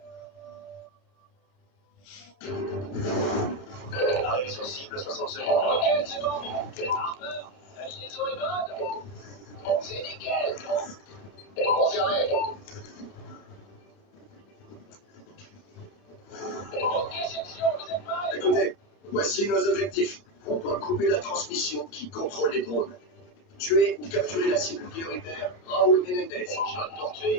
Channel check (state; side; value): late; right; 30 ms